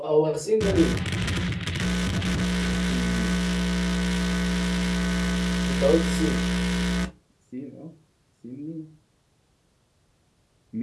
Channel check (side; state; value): both; identical; correlation 1.00